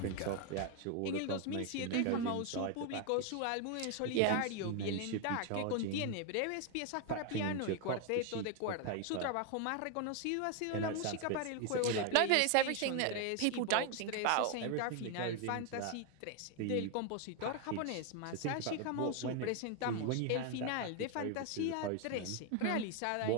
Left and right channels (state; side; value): different; both; correlation 0.01